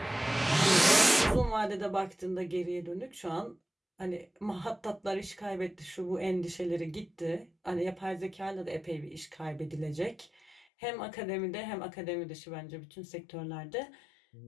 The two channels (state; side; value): drops out; right; at 10.7 s